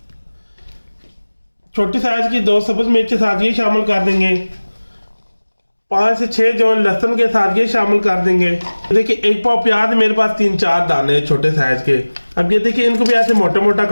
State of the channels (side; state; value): both; inverted; correlation -1.00